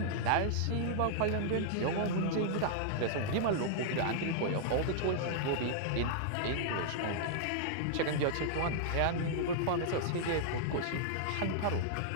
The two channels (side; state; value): both; different; correlation -0.01